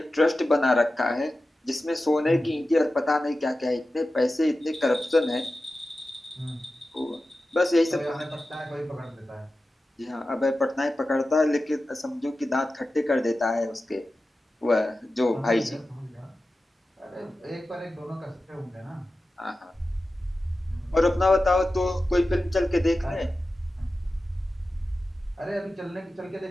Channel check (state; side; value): normal; both; correlation 0.94